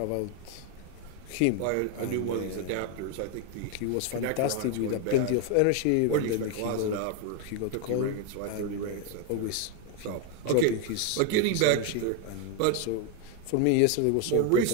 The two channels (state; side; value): different; both; correlation 0.01